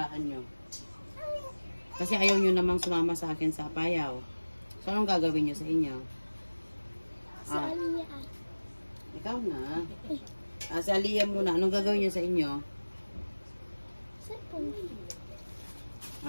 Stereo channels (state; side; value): inverted; both; correlation -1.00